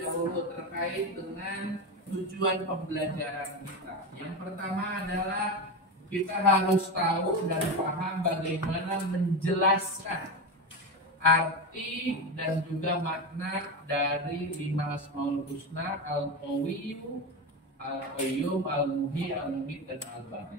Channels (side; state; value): both; normal; correlation 0.18